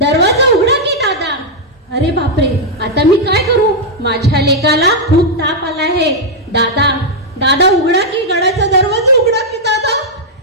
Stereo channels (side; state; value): both; normal; correlation -0.03